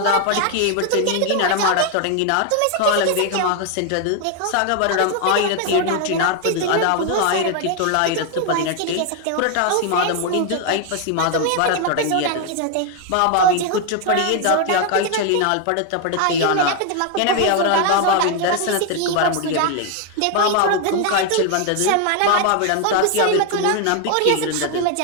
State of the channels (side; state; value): both; different; correlation 0.01